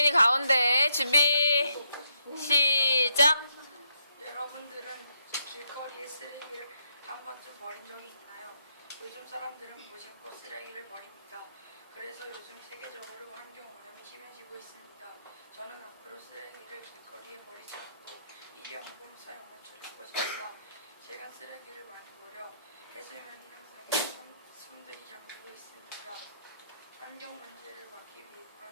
가운데 준비 시작. 여러분들은 길거리에 쓰레기를 한 번쯤 버린 적이 있나요? 요즘 사람들은 무심코 쓰레기를 버립니다. 그래서 요즘 세계적으로 환경 오염이 심해지고 있습니다. 저는 앞으로 쓰레기를 길거리에 버리지 않고 일회용품 사용을 줄일 것입니다. 제가 쓰레기를 많이 버려 해수면이 향상해 섬들이 잠기고 있습니다. 환경 문제를 막기 위해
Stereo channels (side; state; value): both; inverted; correlation -0.79